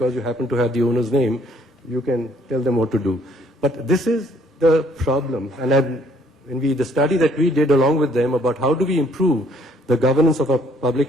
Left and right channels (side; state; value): both; normal; correlation 0.63